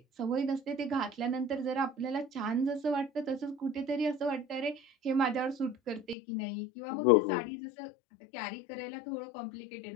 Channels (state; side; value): drops out; right; at 6.2 s